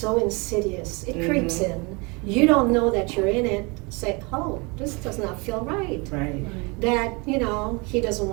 insidious. It creeps in. You don't know that you're in it. Say, oh, this does not feel right. That he doesn't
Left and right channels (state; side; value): quieter; left; 28.5 dB